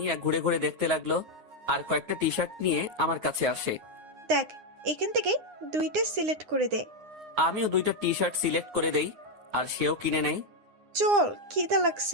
ঘুরে ঘুরে দেখতে লাগলো আর কয়েকটা টি শার্ট নিয়ে আমার কাছে আসে। দেখ, এখান থেকে দুইটা সিলেক্ট করে দে। আমিও দুইটা টি শার্ট সিলেক্ট করে দেই, আর সেও কিনে নেই। চল, খিদা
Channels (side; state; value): left; late; 9.3 ms